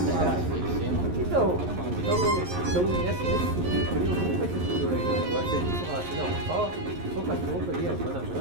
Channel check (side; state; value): left; late; 11 ms